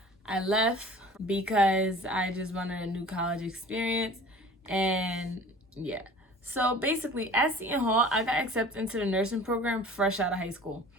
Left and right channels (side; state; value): both; normal; correlation 0.44